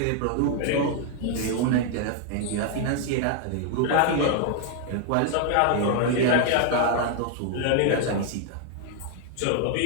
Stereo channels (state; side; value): different; both; correlation 0.00